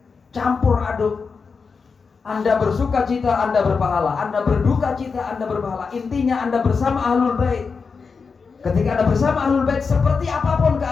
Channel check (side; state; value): right; quieter; 5.1 dB